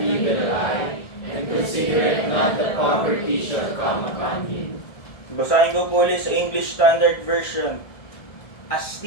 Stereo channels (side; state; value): right; late; 1.7 ms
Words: evil eye, and considereth not the poverty shall come upon him. Basahin ko po ulit sa English Standard Version. A